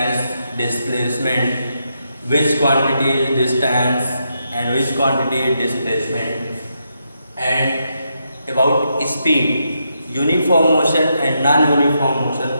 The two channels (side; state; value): both; inverted; correlation -0.82